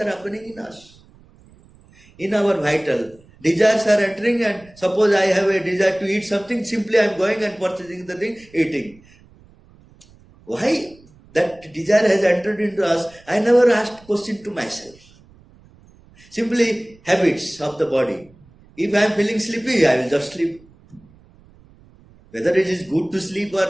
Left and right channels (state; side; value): noise; right; rumble, 27 dB below the sound